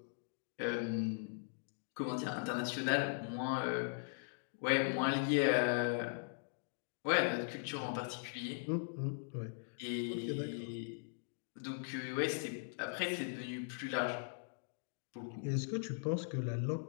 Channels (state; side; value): silent; right; digital silence